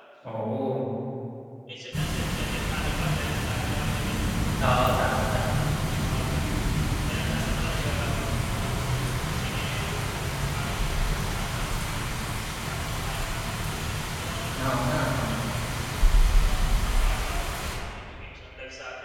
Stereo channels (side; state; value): both; identical; correlation 1.00